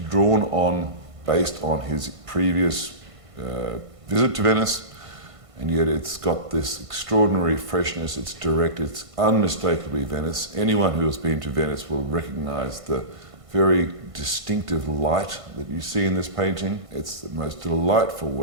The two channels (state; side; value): late; left; 1.5 ms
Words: on based on his previous visit to Venice, and yet it's got this extraordinary freshness. It's direct, it's unmistakably Venice. Anyone who has been to Venice will recognise the very distinctive light that you see in this painting. It's the most delightful